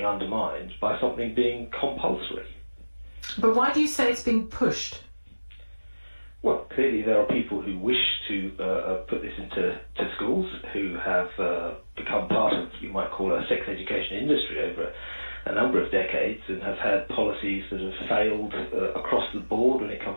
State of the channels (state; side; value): inverted; both; correlation -1.00